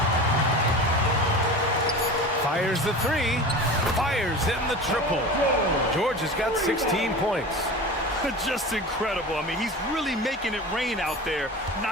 Fires the three. Fires in the triple. George has got 16 points. Just incredible. I mean, he's really making it rain out there,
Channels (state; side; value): normal; both; correlation 0.33